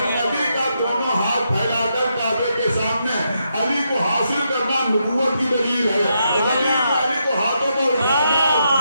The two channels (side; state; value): both; inverted; correlation -0.81